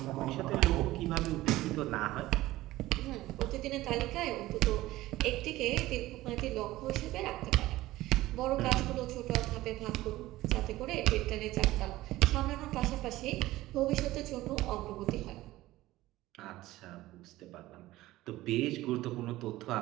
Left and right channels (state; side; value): quieter; left; 16.9 dB